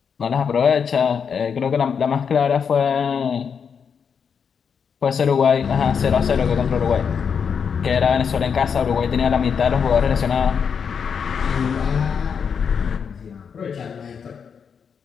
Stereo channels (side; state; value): right; quieter; 6.7 dB